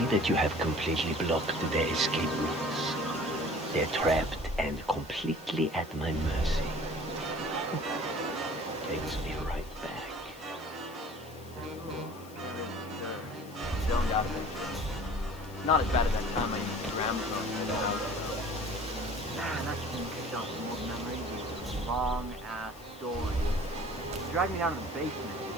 that you have completely blocked their escape routes. They're trapped and completely at my mercy. Takes me right back. Don't doubt it. Not as bad as that time I used to ramble on. Man, that shouldn't kick off some old memories. Long-ass story. He dragged me down to the basement and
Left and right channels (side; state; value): left; noise; hiss, 22 dB below the sound